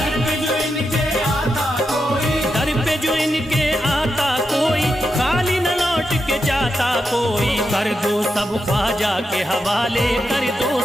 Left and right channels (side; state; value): both; normal; correlation 0.86